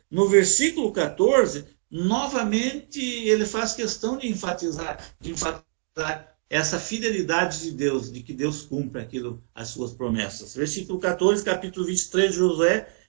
no versículo 14, novamente ele faz questão de enfatizar essa fidelidade de Deus, de que Deus cumpre as suas promessas. Versículo 14, capítulo 23 de Josué,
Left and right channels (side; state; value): left; silent; 62 dB below the other